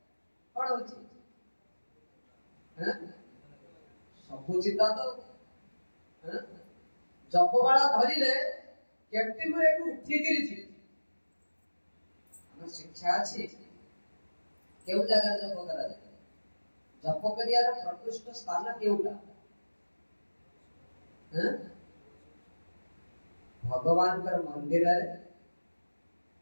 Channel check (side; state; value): both; inverted; correlation -1.00